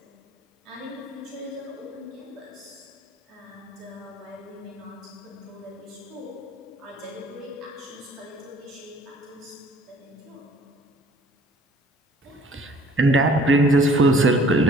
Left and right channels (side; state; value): both; normal; correlation 0.55